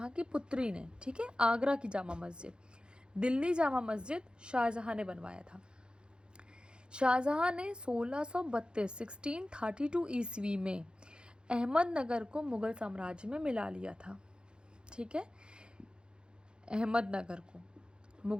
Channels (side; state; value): left; late; 0.050 ms